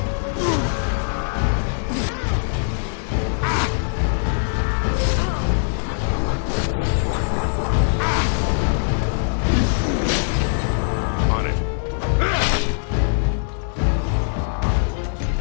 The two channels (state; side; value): silent; right; digital silence